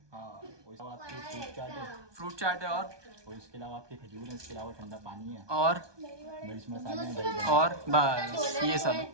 हाँ, फ्रूट चाट है, और इसके अलावा आपके खजूर है, इसके अलावा ठंडा पानी है, और मिर्च मसाले, और बस ये सब।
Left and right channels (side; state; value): left; late; 1.2 ms